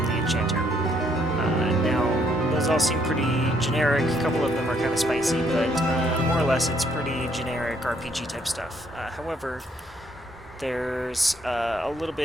the enchanter. Now, those all seem pretty generic. A couple of them are kind of spicy, but more or less it's pretty generic RPG type stuff. However, there's a little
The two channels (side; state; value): both; normal; correlation 0.69